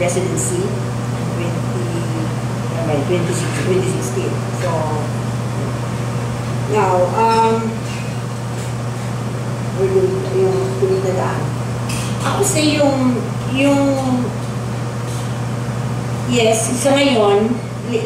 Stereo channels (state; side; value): identical; both; correlation 1.00